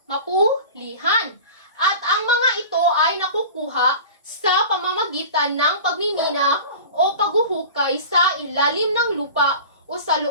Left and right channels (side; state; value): both; inverted; correlation -0.35